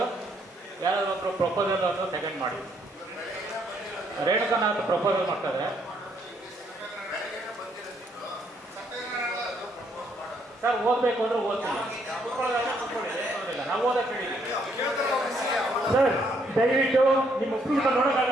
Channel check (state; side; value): normal; both; correlation 0.71